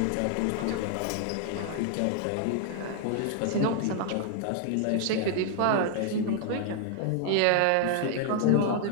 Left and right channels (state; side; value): different; both; correlation 0.00